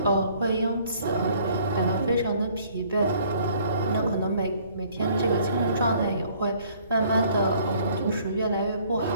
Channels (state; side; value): inverted; both; correlation -0.59